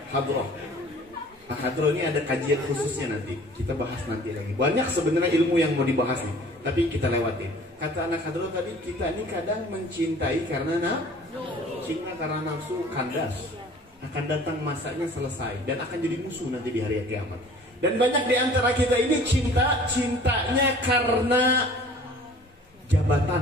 Hadroh. Nah, hadroh ini ada kajian khususnya nanti. Kita bahas nanti lagi. Banyak sebenarnya ilmu yang mau dibahas nih, tapi kita lewatin. Kata anak hadroh tadi, kita ini kadang mencintai karena cinta karena nafsu kandas. Akan datang masanya selesai dan akan jadi musuh nanti di hari kiamat. Dan banyak di antara kita ini cintanya karena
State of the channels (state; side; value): normal; both; correlation 0.49